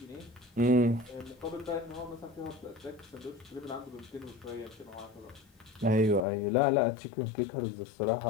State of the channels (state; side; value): drops out; right; at 6.2 s